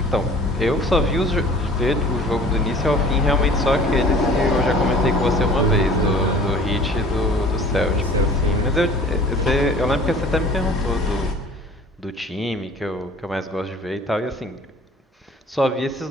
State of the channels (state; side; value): normal; both; correlation 0.47